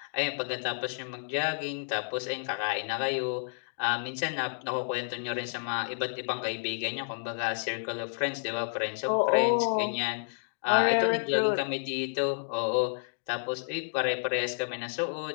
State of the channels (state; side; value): silent; right; digital silence